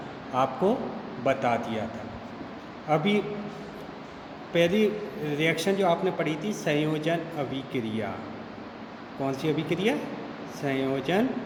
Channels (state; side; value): identical; both; correlation 1.00